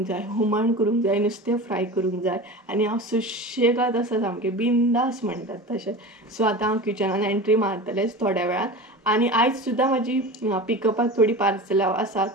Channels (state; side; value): normal; both; correlation 0.31